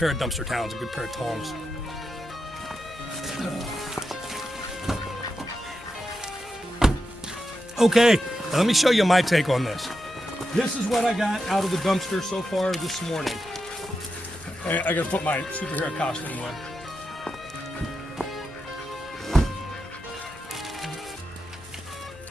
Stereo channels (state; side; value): normal; both; correlation 0.88